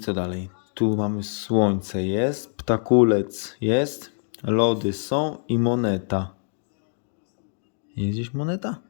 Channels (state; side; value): silent; right; 62 dB below the other